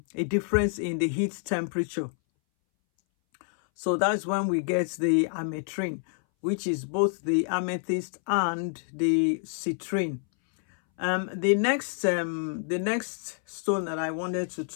difference in the heat temperature. So that's when we get the ametrine, which is both the amethyst and the citrine. The next stone that I wanted to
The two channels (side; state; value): right; silent; 60 dB below the other